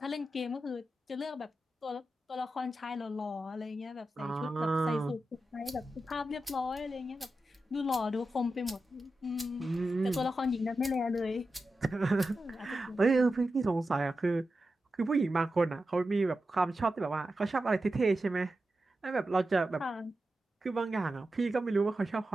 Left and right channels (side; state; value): both; normal; correlation 0.91